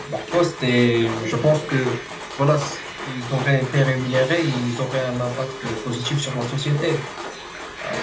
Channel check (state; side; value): identical; both; correlation 1.00